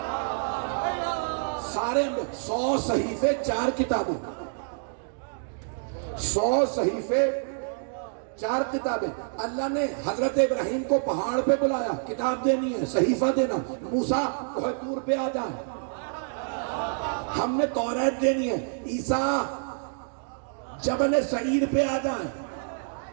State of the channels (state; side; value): silent; left; digital silence